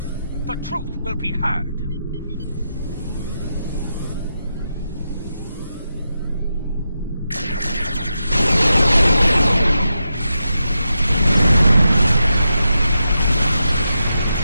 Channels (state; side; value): inverted; both; correlation -0.87